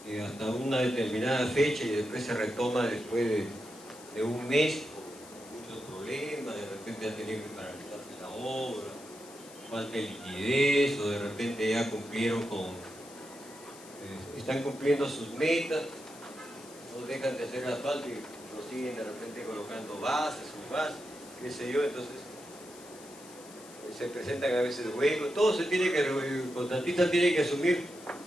hasta una determinada fecha y después se retoma después de un mes con muchos problemas, de repente ya tenía que paralizarse la obra, falta de liquidez, o de repente ya cumplieron están cumpliendo sus metas, no dejan de hacer asfalto y lo siguen de repente colocando bases, subbases, qué sé yo, entonces se presentan a veces huecos, todo se tiene que, el contratista tiene que asumir,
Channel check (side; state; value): left; noise; hiss, 19 dB below the sound